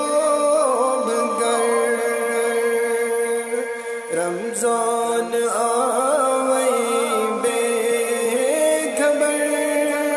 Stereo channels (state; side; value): identical; both; correlation 1.00